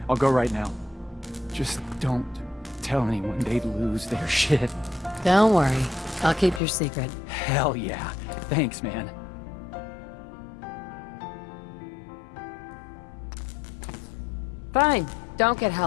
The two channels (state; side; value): drops out; right; at 6.6 s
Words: I'll go right now. Just don't tell anyone they'd lose their shit. Don't worry. I'll keep your secret. Hell yeah. Thanks, man. Fine. Don't get